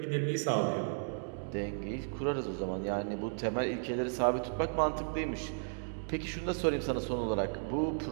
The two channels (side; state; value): left; silent; digital silence